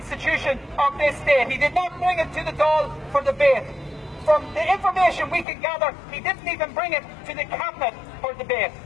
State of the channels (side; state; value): right; drops out; at 5.5 s